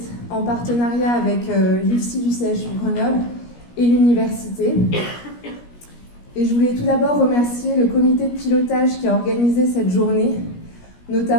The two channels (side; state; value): right; late; 17 ms